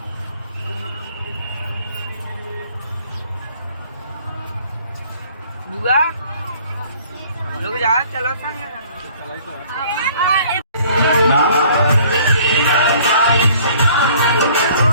लोग जा चलो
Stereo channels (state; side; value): inverted; both; correlation -0.55